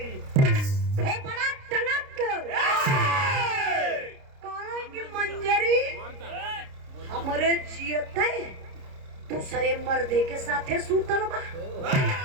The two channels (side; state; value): left; late; 30 ms